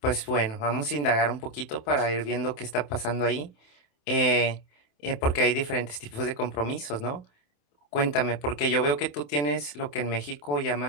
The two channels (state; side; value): late; right; 27 ms